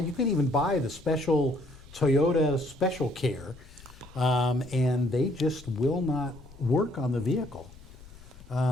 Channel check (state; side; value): noise; left; rumble, 20 dB below the sound